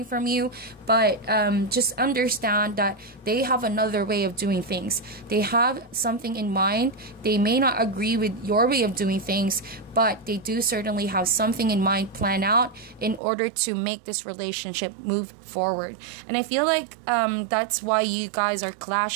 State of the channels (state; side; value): drops out; left; at 13.2 s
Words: from you. But just understand that they have another way of doing things. They have something in mind. They may not agree with your way of doing things, but they do certainly have something in mind planned out in order to make this relationship move forward. And I feel like that's why you guys are